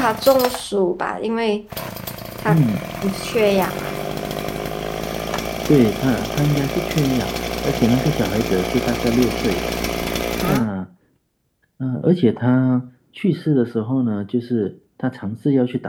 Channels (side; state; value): both; identical; correlation 1.00